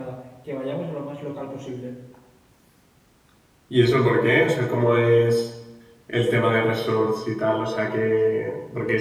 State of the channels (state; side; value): identical; both; correlation 1.00